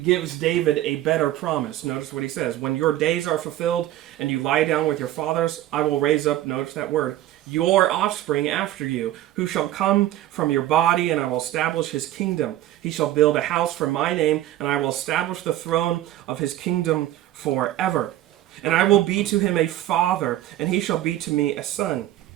David a better promise. Notice what he says. When your days are fulfilled and you lie down with your fathers, I will raise up, notice that word, your offspring after you, who shall come from your body, and I will establish his kingdom. He shall build a house for my name, and I will establish the throne of his kingdom forever. And I will be to him a father, and he shall be to me a son.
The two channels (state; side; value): quieter; left; 13.9 dB